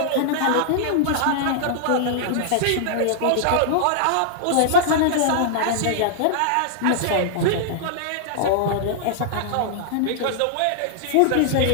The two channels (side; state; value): both; different; correlation -0.01